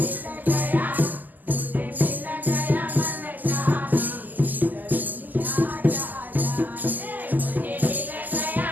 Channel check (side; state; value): left; late; 0.084 ms